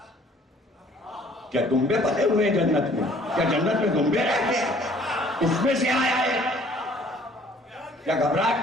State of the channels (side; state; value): both; normal; correlation 0.56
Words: کیا دمبے پلے ہوئے جنت میں؟ کیا جنت میں دمبے رہتے ہیں؟ اس میں سے آیا ہے؟ کیا گھبراہٹ